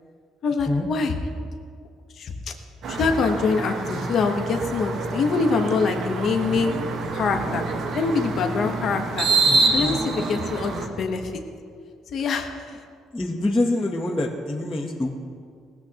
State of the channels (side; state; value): both; normal; correlation 0.73